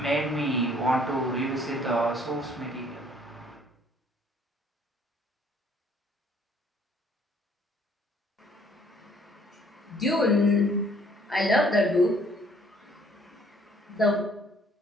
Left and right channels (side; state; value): both; normal; correlation 0.60